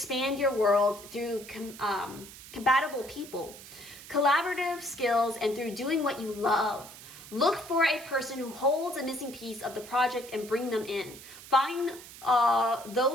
your world through compatible people, collaborative skills, and through doing what you love. Look for a person who holds a missing piece of the project and bring them in. Find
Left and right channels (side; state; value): right; noise; hiss, 16 dB below the sound